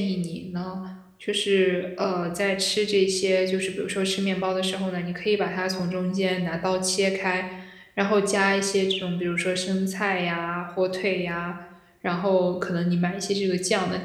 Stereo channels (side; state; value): both; identical; correlation 1.00